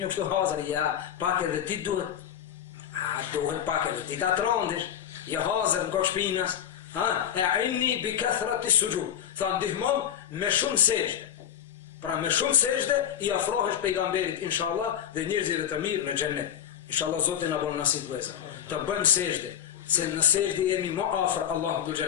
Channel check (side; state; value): right; quieter; 9.8 dB